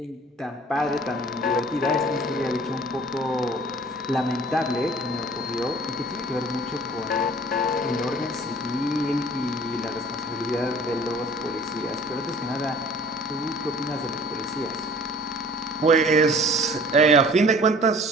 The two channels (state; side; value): normal; both; correlation 0.49